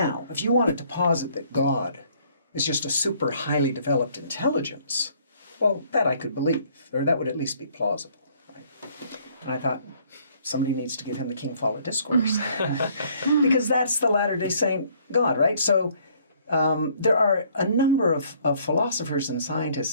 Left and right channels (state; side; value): inverted; both; correlation -0.62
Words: if you wanted to posit that God is just a super highly developed intelligence, well, that I could believe, or that would at least be plausible. Right? And I thought, somebody needs to give him the King Follett Discourse. Because that's the Latter-day Saint God, right? So there are a number of philosophers and scientists,